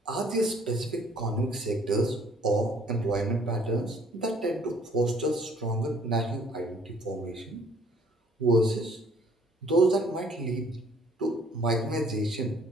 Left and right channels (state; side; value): normal; both; correlation 0.59